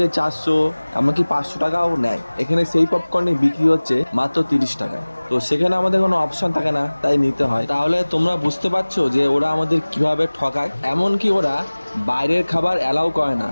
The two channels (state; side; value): inverted; both; correlation -1.00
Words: 400 এমনকি 500 টাকাও নেয়। এখানে সেই পপকর্নে বিক্রি হচ্ছে মাত্র 30 টাকায়। তো সেখানে আমাদের কোনো অপশন থাকে না, তাই নিতে হয়। তাহলে তোমরা বুঝতে পারছো যে ওরা আমাদের কিভাবে ঠকায়। এমনকি ওরা বাইরের খাবার অ্যালাউ করে না,